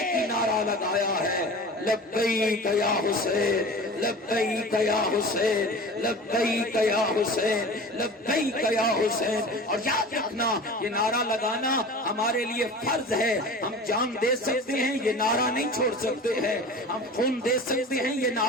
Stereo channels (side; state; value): both; normal; correlation 0.36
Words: ہی نعرہ لگایا ہے، لبیک یا حسین، لبیک یا حسین، لبیک یا حسین، لبیک یا حسین۔ اور یاد رکھنا یہ نعرہ لگانا ہمارے لیے فرض ہے، ہم جان دے سکتے ہیں، یہ نعرہ نہیں چھوڑ سکتے ہیں، ہم خون دے سکتے ہیں، یہ